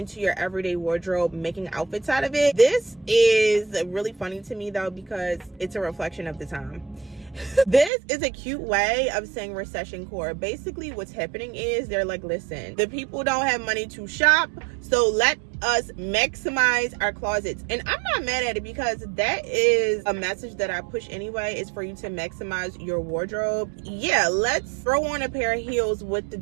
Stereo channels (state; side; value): drops out; left; at 7.9 s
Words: your everyday wardrobe, making outfits out of it. This is really funny to me though, because it's a reflection of the time. This is a cute way of saying recession core. Basically what's happening is they're like, listen, the people don't have money to shop, so let us maximize our closets. And I'm not mad at it, because that is a message that I push anyway, is for you to maximize your wardrobe. Yeah, let's throw on a pair of heels with the